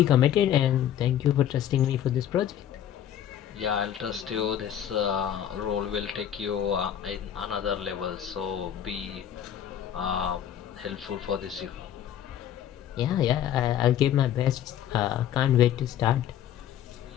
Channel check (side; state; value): right; quieter; 10.3 dB